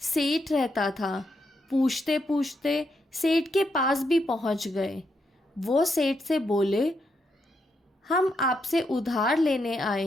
सेठ रहता था। पूछते पूछते सेठ के पास भी पहुंच गए। वो सेठ से बोले, हम आपसे उधार लेने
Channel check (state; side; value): normal; both; correlation 0.80